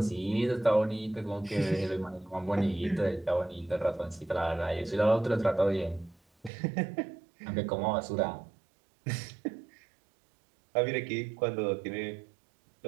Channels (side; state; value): left; drops out; at 6.5 s